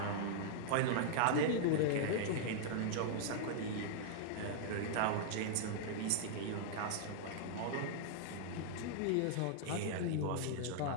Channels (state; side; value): different; both; correlation -0.01